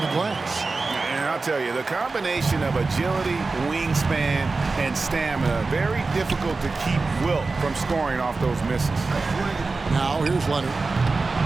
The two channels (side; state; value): left; quieter; 3.8 dB